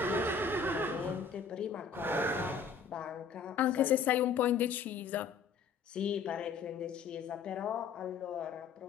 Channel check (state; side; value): quieter; right; 5.8 dB